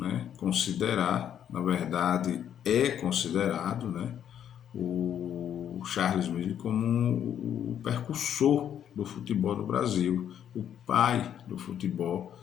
considerar, na verdade é considerado, né, o Charles Miller como o precursor do futebol no Brasil, o pai do futebol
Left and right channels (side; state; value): right; quieter; 9.6 dB